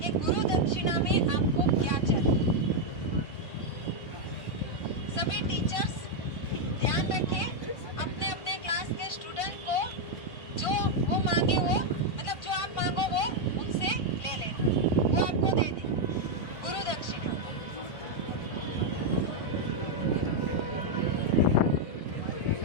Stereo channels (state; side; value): late; right; 1.5 ms